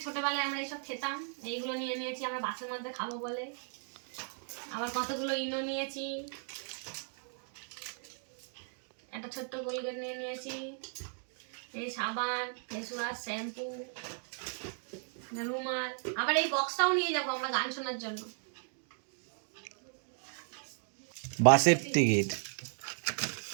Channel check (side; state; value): left; silent; 54 dB below the other